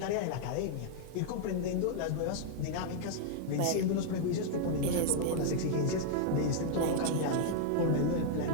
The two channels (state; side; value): different; both; correlation -0.01